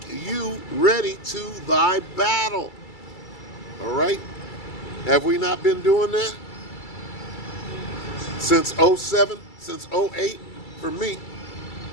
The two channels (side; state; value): right; late; 2.3 ms